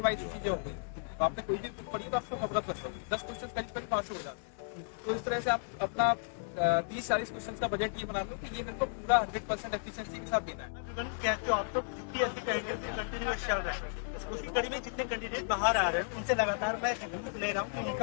वाइज चीजें हो गई। तो आपने कोई भी बुक पढ़ी तो आपको अवगत कर सकते 10 क्वेश्चन करीब करीब पास हो जाते हैं। तो इस तरह से आप अपना 30-40 क्वेश्चन का बजट ये बना लो कि ये मेरे को पूरा 100% एफिशिएंसी के साथ देना है। कहते हो आप तो यूपीएससी का इंटरव्यू कंटिन्यूअस चल रहा है, उसकी कड़ी में जितने कैंडिडेट बाहर आ रहे हैं उनसे लगातार मैं रिव्यू ले रहा हूँ कि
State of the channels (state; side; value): silent; right; 55 dB below the other